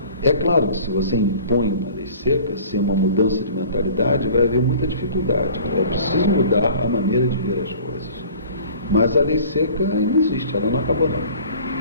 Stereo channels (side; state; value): both; inverted; correlation -0.47